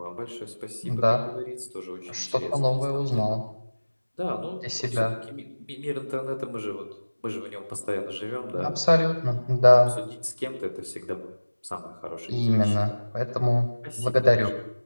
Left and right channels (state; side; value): inverted; both; correlation -1.00